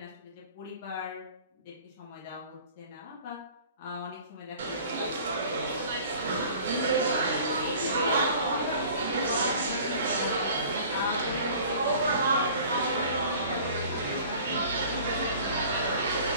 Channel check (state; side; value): inverted; both; correlation -0.47